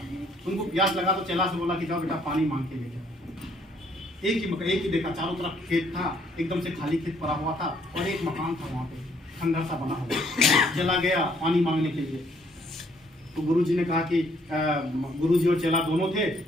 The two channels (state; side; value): normal; both; correlation 0.66